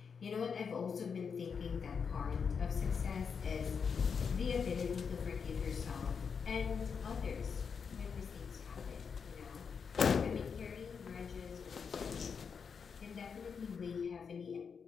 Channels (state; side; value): quieter; right; 6.1 dB